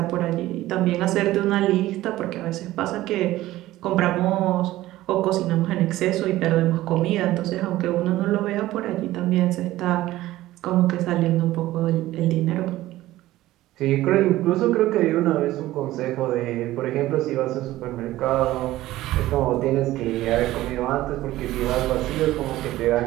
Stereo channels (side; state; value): left; quieter; 16.0 dB